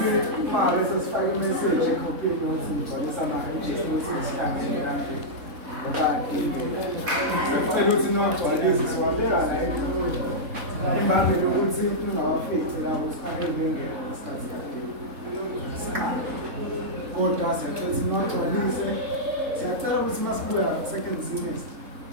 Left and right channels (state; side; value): late; left; 3.7 ms